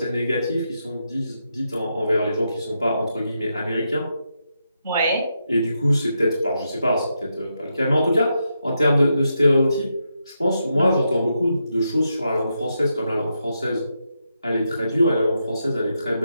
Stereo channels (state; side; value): inverted; both; correlation -0.83